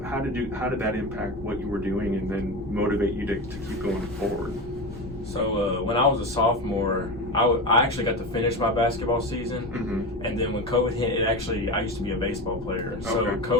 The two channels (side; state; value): left; noise; rumble, 17 dB below the sound